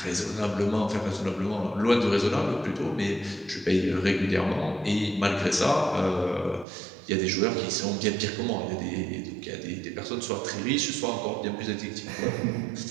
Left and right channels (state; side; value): drops out; left; at 6.7 s